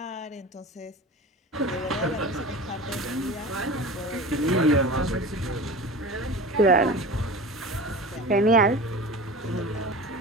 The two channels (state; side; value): normal; both; correlation 0.34